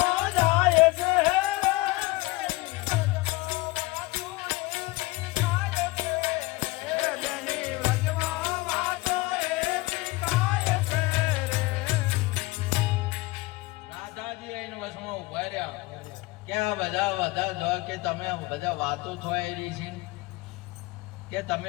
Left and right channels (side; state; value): right; quieter; 21.5 dB